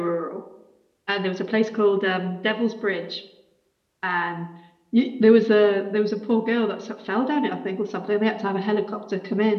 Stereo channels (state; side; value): identical; both; correlation 1.00